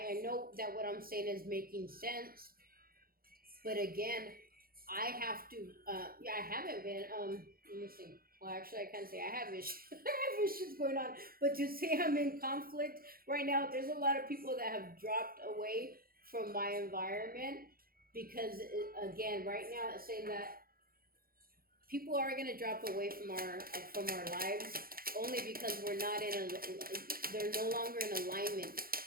know that what I'm saying is making sense, but again, I have to. I haven't been. Let me see. Well, actually, I can't say I have issues. I have issues going on, but to say I'm in conflict right now, there's a lot of people that have dropped away from my environment, because again, right now, it's saying that people are going to drop away from our lives only because they're no longer in alignment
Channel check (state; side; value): late; left; 0.43 ms